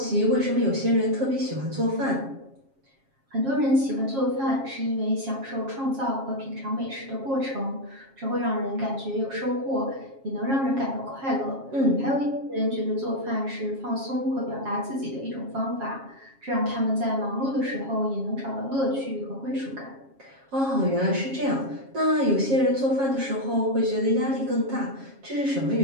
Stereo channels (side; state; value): left; late; 7.4 ms